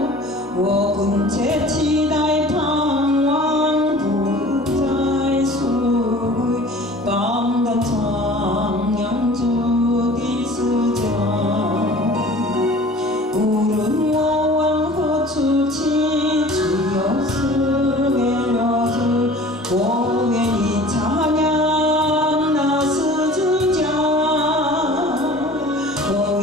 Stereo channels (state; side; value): normal; both; correlation 0.45